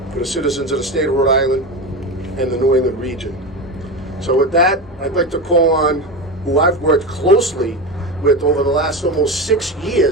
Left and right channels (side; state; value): both; normal; correlation 0.22